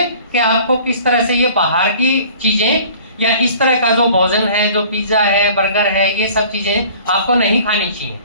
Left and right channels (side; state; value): both; inverted; correlation -0.48